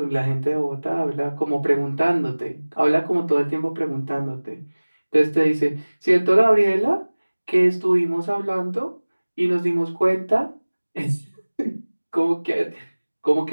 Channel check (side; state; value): both; inverted; correlation -1.00